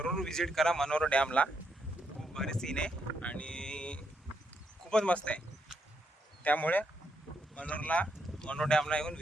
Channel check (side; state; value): both; normal; correlation 0.78